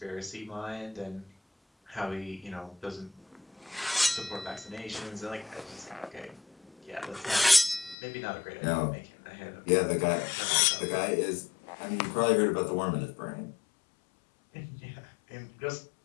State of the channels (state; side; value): drops out; right; at 8.0 s